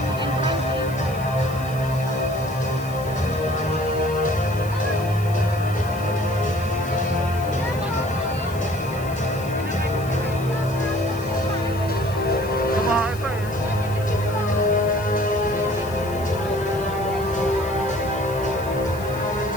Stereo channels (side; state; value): left; noise; hiss, 18 dB below the sound